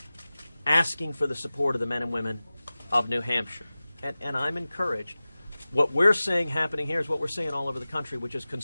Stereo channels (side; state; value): both; inverted; correlation -0.97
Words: asking for the support of the men and women of New Hampshire. And I'm encouraged. What we're seeing happening here is what we're seeing all over the country, which is